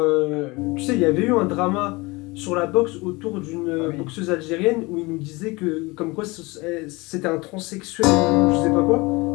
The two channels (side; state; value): right; quieter; 24.2 dB